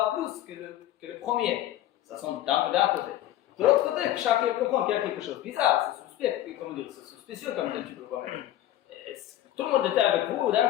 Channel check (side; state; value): right; quieter; 13.3 dB